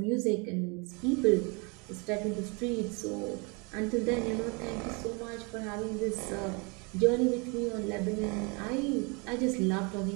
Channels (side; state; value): left; quieter; 31.1 dB